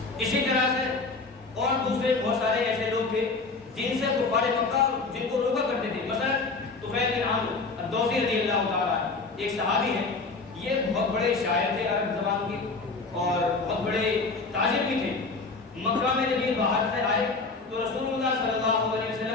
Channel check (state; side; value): quieter; right; 3.9 dB